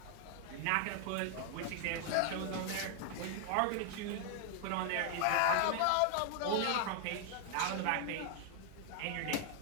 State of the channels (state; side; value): different; both; correlation 0.00